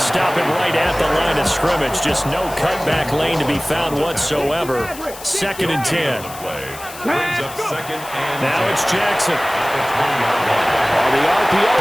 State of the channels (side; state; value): left; noise; hiss, 15 dB below the sound